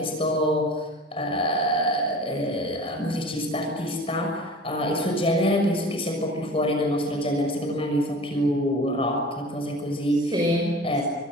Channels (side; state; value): both; normal; correlation 0.40